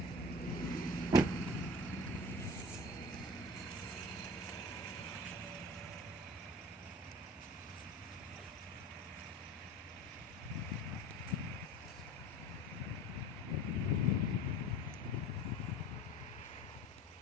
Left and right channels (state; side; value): normal; both; correlation 0.39